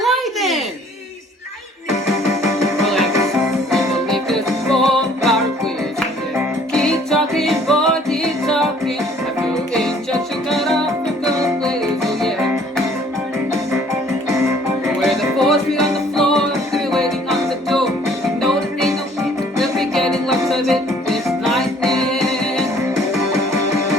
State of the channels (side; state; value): both; normal; correlation 0.57